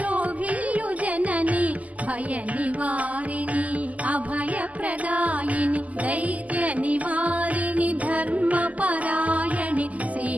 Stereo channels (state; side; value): late; left; 0.073 ms